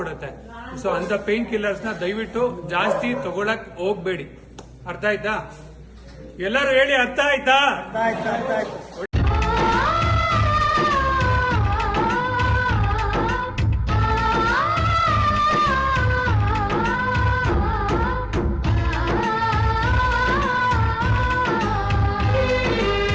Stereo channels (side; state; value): both; identical; correlation 1.00